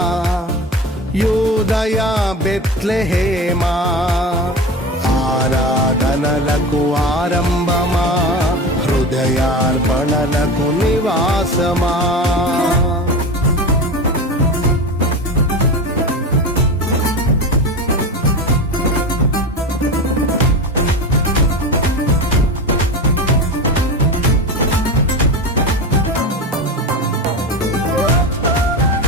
యూదయ బెత్లెహేమా, ఆరాధనలకు ఆరంభమా హృదయార్పణలకు నివాసమా.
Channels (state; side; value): normal; both; correlation 0.26